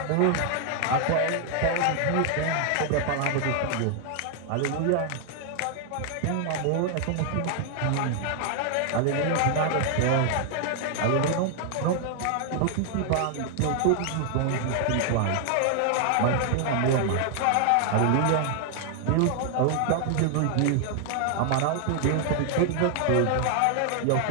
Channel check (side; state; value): both; different; correlation 0.00